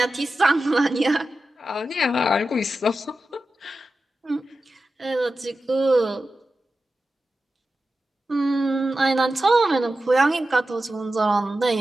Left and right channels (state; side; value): normal; both; correlation 0.92